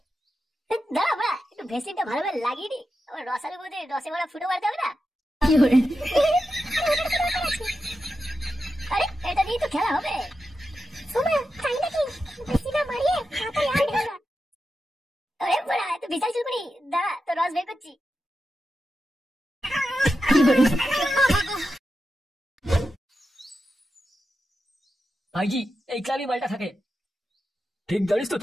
দাঁড়া বাড়া, একটু ভেসলিনটা ভালোভাবে লাগিয়ে নি, আমার রসালো বোধে রসে ভরা ফুটো মারতে হবে না। আরে এটা দিয়ে তো খেলা হবে। তাই নাকি? ভেসলিনটা মারিয়ে হাতে আর ঢালা। আরে বড়া, তুই বিশাল চুলকুনি, দাঁড়া তো রস বের করছি। ভাইজি এই ক্লাবই মালটা থাকে। ঠিক জানিস তো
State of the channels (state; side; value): normal; both; correlation 0.89